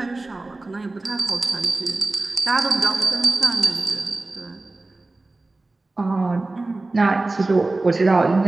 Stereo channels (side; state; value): left; quieter; 3.1 dB